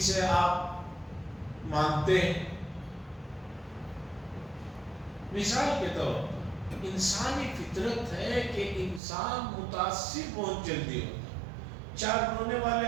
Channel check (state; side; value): drops out; left; at 9.0 s